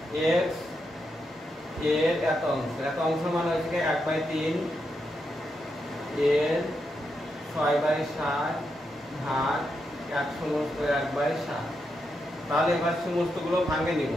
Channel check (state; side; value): normal; both; correlation 0.84